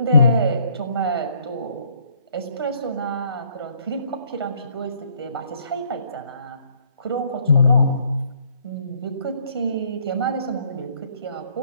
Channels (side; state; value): both; inverted; correlation -0.64